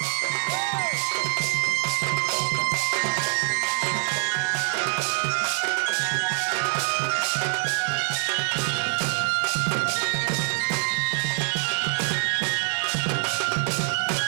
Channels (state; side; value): silent; left; digital silence